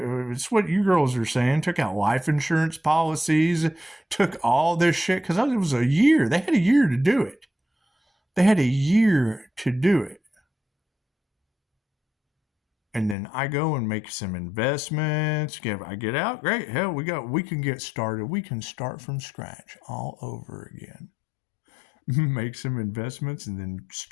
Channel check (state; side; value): drops out; right; at 13.2 s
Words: It's what you girls are saying. Took out life insurance policies. Took all this shit because it was a year. They had a year to do it. They had a year to do it. And then I go and make some investments. I get out, great. Hell, we can get started. We can start from scratch all over again. Make some investments and then